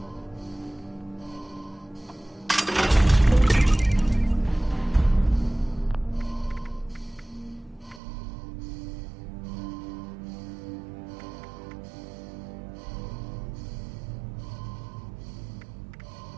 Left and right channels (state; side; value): drops out; left; at 8.0 s